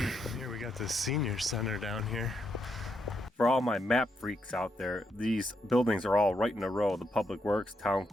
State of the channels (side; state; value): both; normal; correlation 0.80